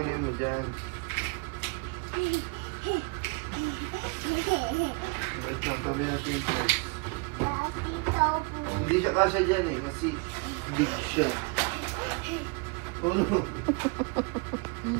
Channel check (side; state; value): left; quieter; 31.2 dB